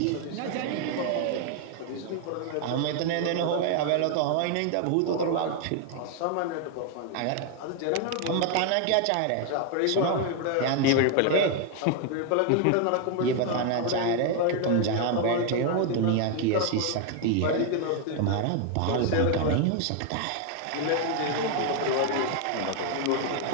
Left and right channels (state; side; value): different; both; correlation 0.00